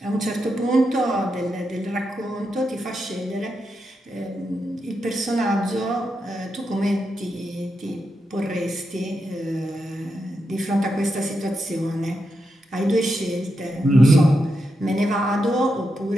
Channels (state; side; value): normal; both; correlation 0.85